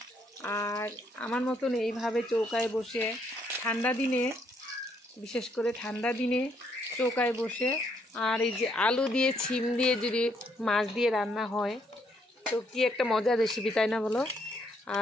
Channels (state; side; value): normal; both; correlation 0.72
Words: আর আমার মতন এইভাবে চৌকায় বসে ঠান্ডা দিনে, বিশেষ করে ঠান্ডা দিনে চৌকায় বসে আর এই যে আলু দিয়ে ছিম দিয়ে যদি মাছ দিয়ে রান্না হয় তো কি একটা মজার রেসিপি, তাই না বলো?